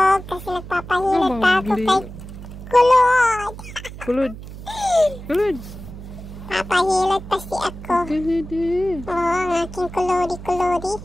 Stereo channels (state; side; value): noise; right; hum, 13 dB below the sound